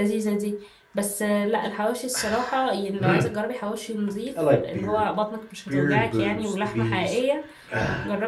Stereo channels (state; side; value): identical; both; correlation 1.00